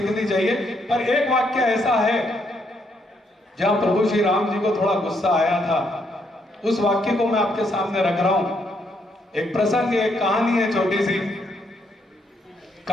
चाहिए। पर एक वाक्य ऐसा है जहां प्रभु श्री राम जी को थोड़ा गुस्सा आया था, उस वाक्य को मैं आपके सामने रख रहा हूं। एक प्रसंग, एक कहानी है, छोटी सी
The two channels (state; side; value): normal; both; correlation 0.74